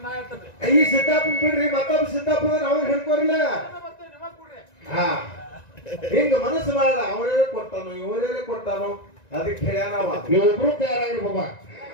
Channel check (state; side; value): late; right; 1.9 ms